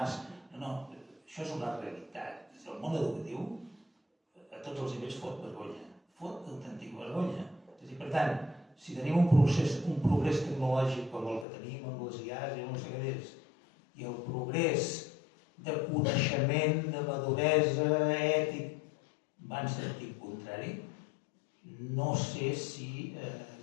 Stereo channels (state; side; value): drops out; right; at 11.5 s